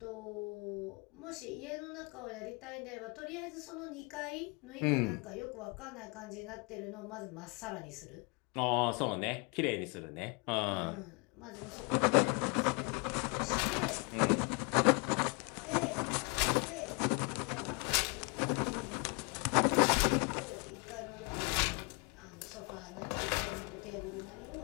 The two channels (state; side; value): quieter; right; 32.1 dB